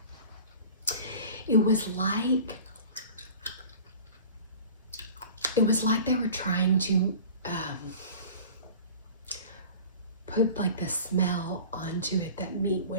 It was like they were trying to put like the smell onto it that meat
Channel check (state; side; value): inverted; both; correlation -0.41